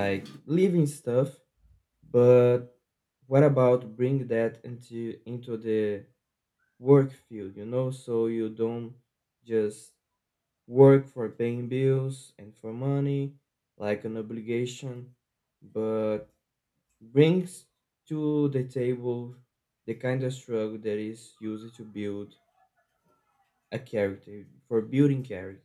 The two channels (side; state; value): both; identical; correlation 1.00